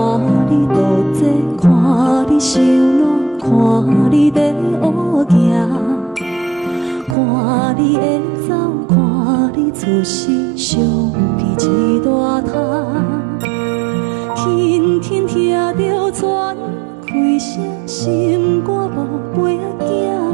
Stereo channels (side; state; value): left; drops out; at 7.2 s